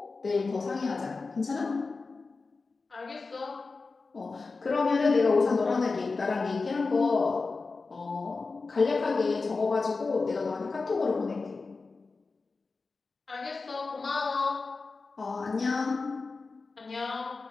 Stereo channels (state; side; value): quieter; right; 4.1 dB